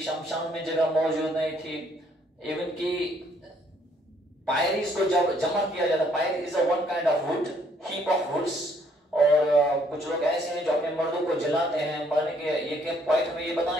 शमशान में जगह मौजूद नहीं थी, इवन की पायरीज को जब जमा किया जाता, pyre is a one kind of wood, heap of woods. और कुछ लोग ऐसे हैं जो अपने मर्दों को जलाते हैं मरने के। ये पॉइंट हमें ये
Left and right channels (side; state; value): both; normal; correlation 0.66